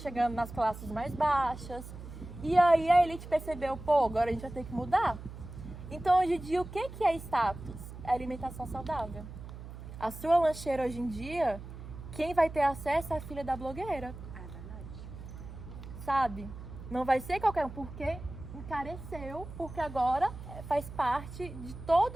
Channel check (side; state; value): right; noise; hum, 12 dB below the sound